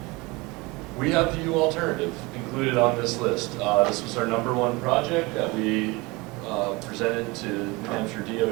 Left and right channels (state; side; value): quieter; left; 24.4 dB